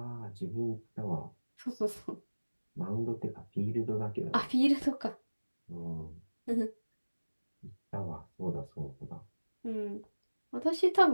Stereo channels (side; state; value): both; inverted; correlation -1.00